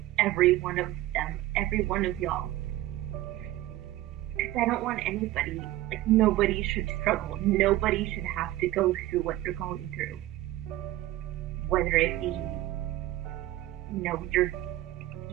every one of them, every one of y'all. Because I don't want anybody, nobody should struggle. Nobody should have to go through what they're going through. Whether it be,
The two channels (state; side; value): quieter; left; 15.8 dB